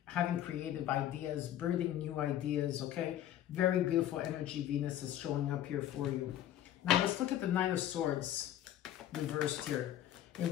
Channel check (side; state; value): right; quieter; 12.0 dB